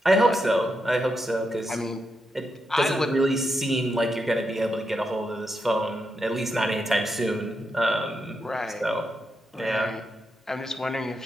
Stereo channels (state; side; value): normal; both; correlation 0.84